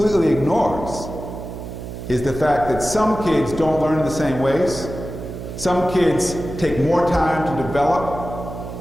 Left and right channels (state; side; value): noise; right; hum, 9 dB below the sound